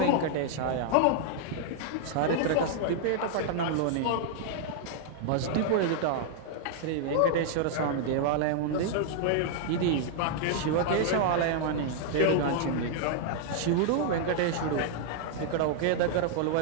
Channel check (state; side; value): different; both; correlation -0.01